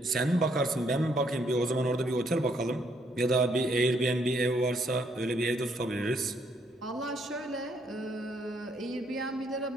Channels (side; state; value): both; normal; correlation 0.71